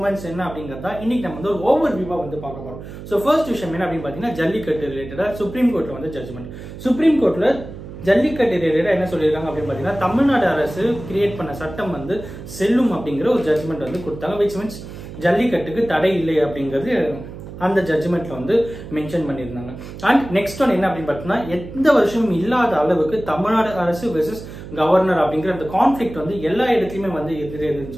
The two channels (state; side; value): noise; right; hum, 12 dB below the sound